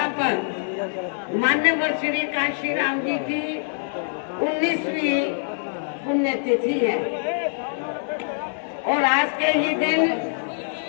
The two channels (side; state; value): right; silent; 61 dB below the other